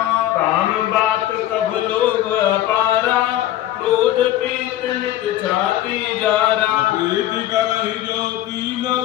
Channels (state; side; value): quieter; right; 13.5 dB